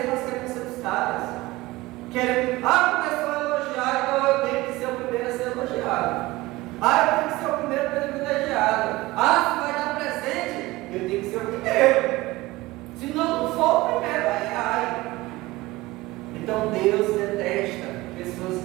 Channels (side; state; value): left; quieter; 19.7 dB